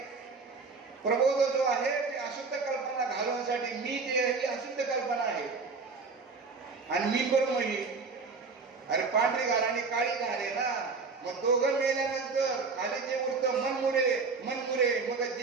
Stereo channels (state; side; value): quieter; left; 4.5 dB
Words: प्रबोध जो आहे ते अशुद्ध कल्पना घालवण्यासाठी मी जे आहे ती अशुद्ध कल्पना आहे. आणि मी करू ही अरे पांढरी घाल आणि काळी घाल आहे ना. मग दोघं मेल्यानंतर खाली जे उरतं मनमुरे मग